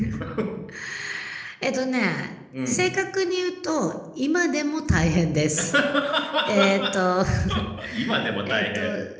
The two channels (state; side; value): identical; both; correlation 1.00